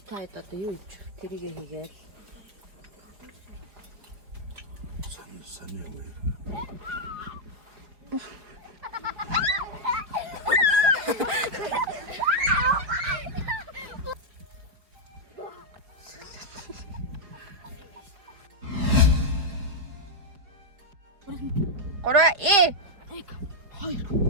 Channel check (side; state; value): left; late; 4.9 ms